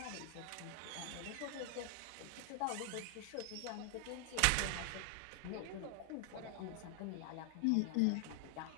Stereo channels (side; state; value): both; different; correlation 0.00